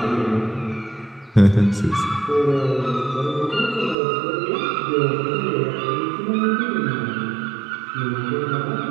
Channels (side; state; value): left; drops out; at 4.0 s